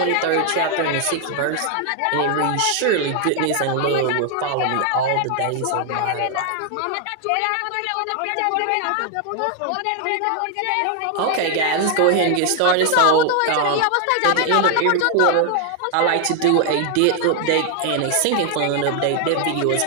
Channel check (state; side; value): different; both; correlation 0.00